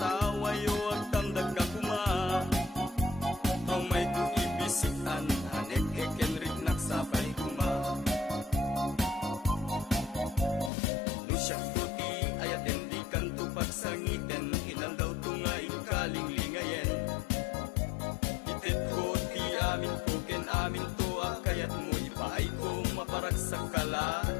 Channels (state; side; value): drops out; right; at 10.7 s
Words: at tamdag ka kuma. Ang may kuibisitan hanek ekenrik nagsapay kuma. Nusyak tuti ayaten di kanto pagsangiten ilan daw tunga ikaling lingayen. Itit ko ti amin ko ken amin to akayat mo ipaay ko maparag sa